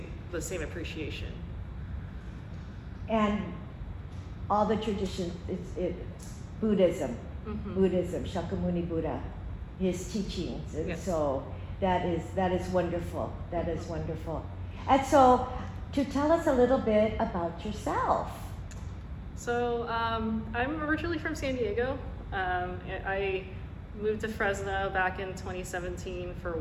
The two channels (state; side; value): identical; both; correlation 1.00